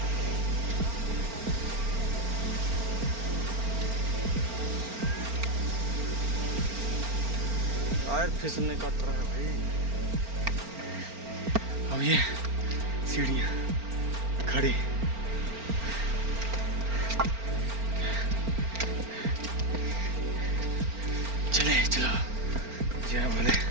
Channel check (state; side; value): late; left; 4.4 ms